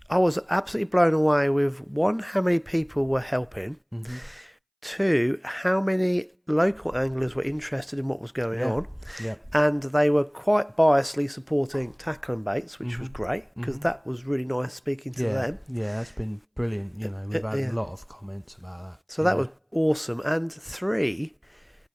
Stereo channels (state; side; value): identical; both; correlation 1.00